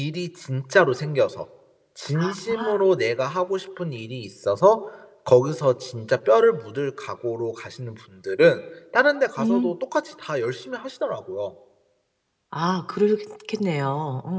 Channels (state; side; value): identical; both; correlation 1.00